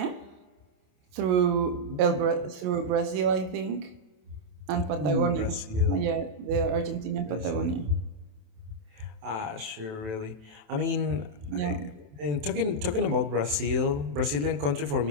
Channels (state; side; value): late; left; 27 ms